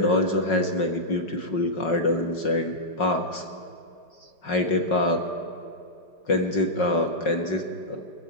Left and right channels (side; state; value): right; late; 5.4 ms